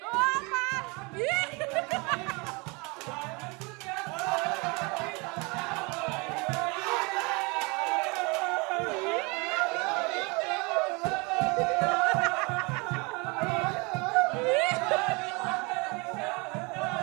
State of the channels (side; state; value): left; quieter; 28.4 dB